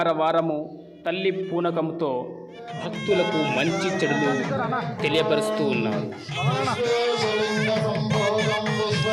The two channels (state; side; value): identical; both; correlation 1.00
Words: తల్లి పూనకంతో భక్తులకు మంచి చెడులు తెలియపరుస్తూ ఉన్నారు.